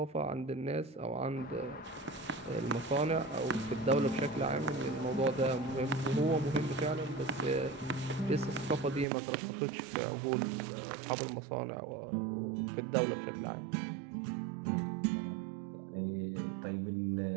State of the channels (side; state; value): left; drops out; at 9.1 s